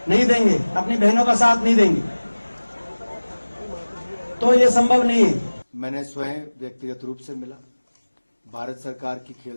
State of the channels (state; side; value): inverted; both; correlation -1.00